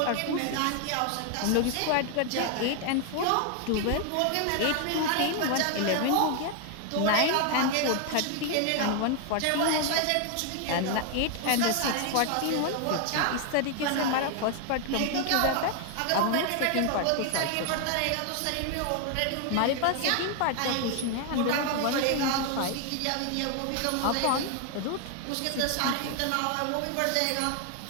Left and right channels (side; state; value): both; different; correlation 0.00